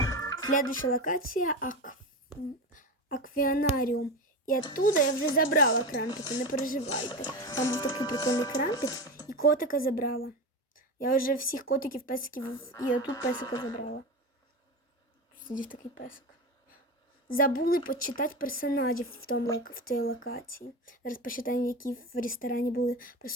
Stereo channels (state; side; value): normal; both; correlation 0.23